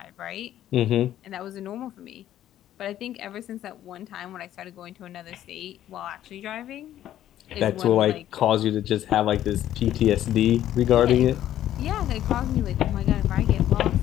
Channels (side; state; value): right; quieter; 12.1 dB